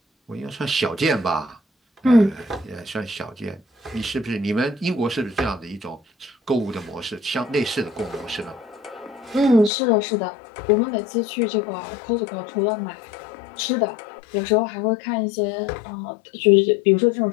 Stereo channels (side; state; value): right; drops out; at 9.7 s